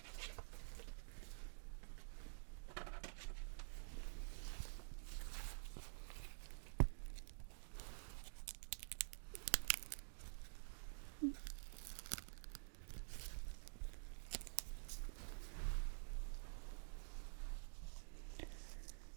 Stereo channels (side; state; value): left; silent; digital silence